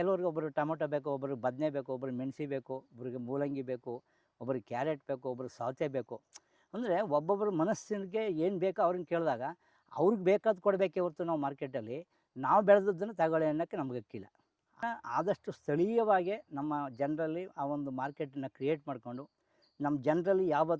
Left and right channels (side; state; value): both; identical; correlation 1.00